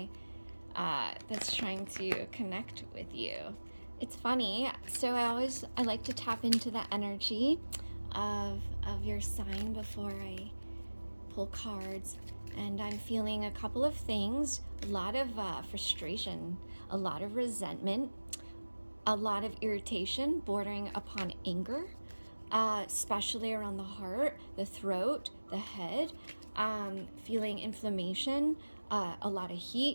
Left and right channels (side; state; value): both; inverted; correlation -1.00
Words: that's trying to connect with you. It's funny. So I like to tap into the energy of your sign before I pull cards. And I'm feeling a couple of things, a lot of frustration, a lot of resentment, a lot of irritation bordering upon anger, especially around the heart, the throat, the head, feeling inflammation, a lot of